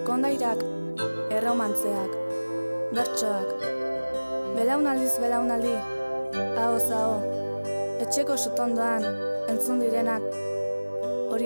kondairak, erromantzeak, bertsoak, belaunaldiz belaunaldi, ahoz aho, etxeko sutondoan entzun direnak,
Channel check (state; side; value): inverted; both; correlation -1.00